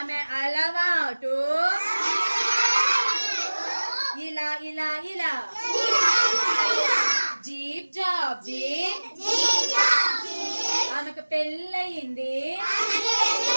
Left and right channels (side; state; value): both; inverted; correlation -1.00